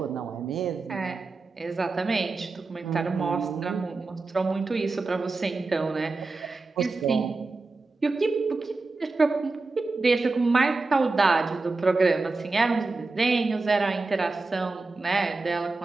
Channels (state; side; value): quieter; left; 3.6 dB